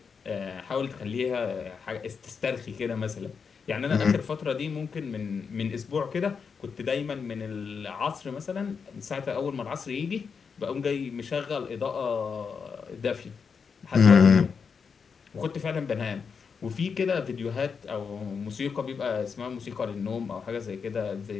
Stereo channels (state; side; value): quieter; right; 5.9 dB